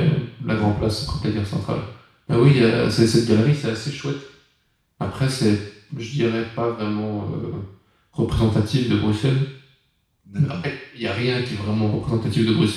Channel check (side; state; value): both; identical; correlation 1.00